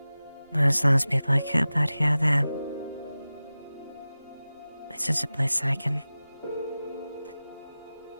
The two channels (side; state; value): both; inverted; correlation -0.96